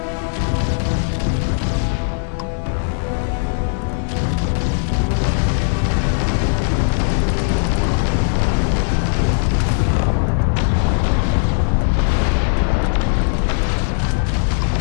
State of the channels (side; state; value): right; silent; digital silence